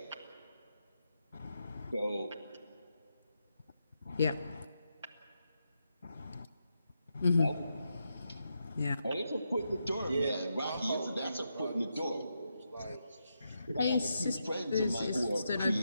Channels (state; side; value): inverted; both; correlation -0.84